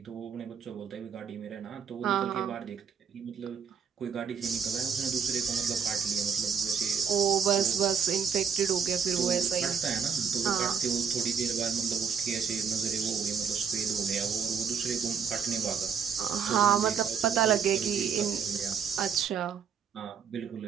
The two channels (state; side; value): quieter; left; 6.9 dB